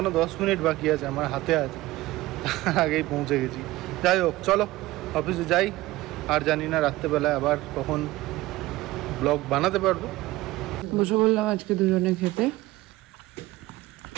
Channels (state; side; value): quieter; left; 18.4 dB